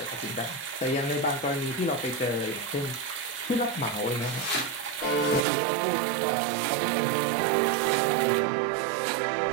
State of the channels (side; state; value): left; drops out; at 5.4 s